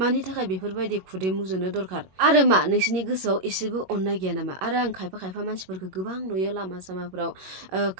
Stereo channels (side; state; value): left; late; 21 ms